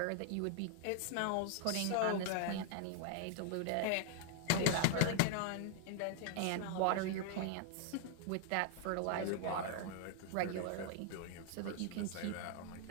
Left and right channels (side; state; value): both; different; correlation 0.00